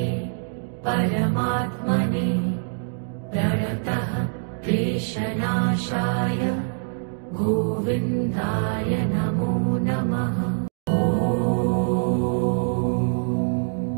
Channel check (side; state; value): left; silent; 61 dB below the other